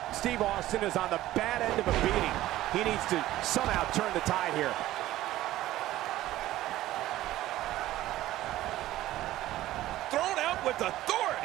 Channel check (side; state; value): left; quieter; 15.1 dB